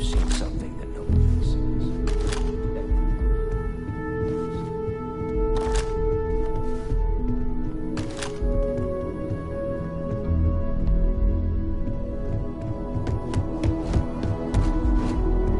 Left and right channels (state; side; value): identical; both; correlation 1.00